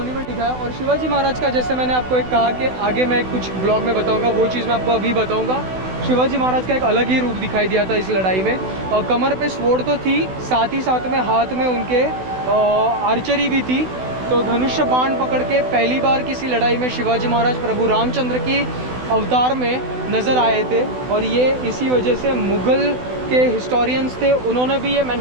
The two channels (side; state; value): left; late; 16 ms